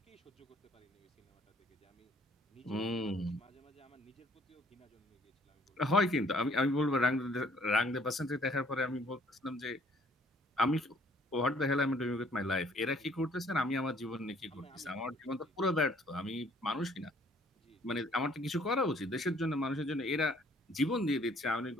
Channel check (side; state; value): both; normal; correlation 0.61